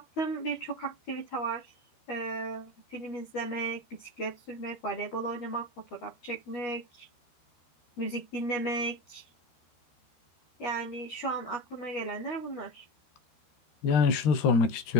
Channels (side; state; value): right; late; 12 ms